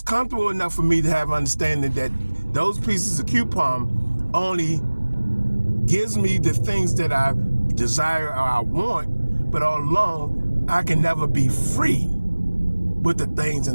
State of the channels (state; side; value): inverted; both; correlation -1.00